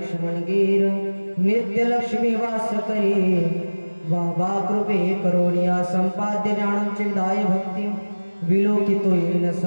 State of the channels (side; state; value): both; inverted; correlation -1.00